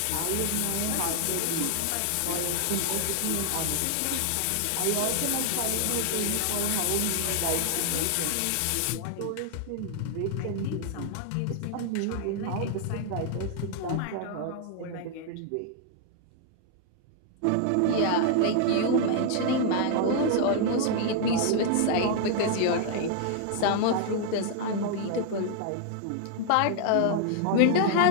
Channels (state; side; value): different; both; correlation 0.00